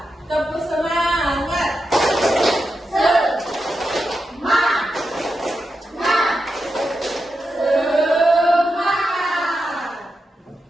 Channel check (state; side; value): normal; both; correlation 0.88